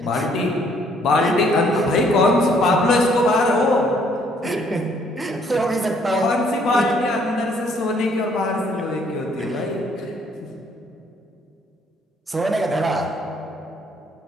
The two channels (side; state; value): both; normal; correlation 0.65